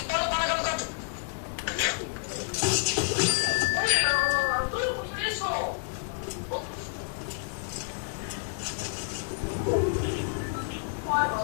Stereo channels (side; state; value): right; silent; 57 dB below the other